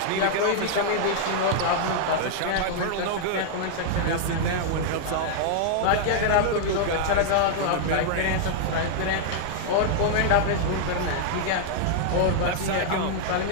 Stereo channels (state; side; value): different; both; correlation -0.01